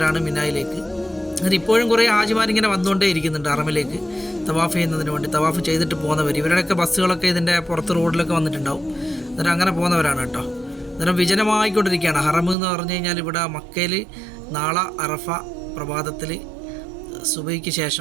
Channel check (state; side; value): drops out; left; at 12.6 s